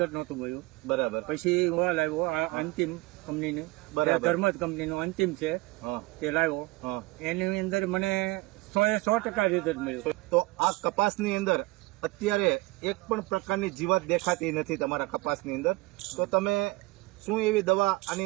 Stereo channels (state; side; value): quieter; left; 22.3 dB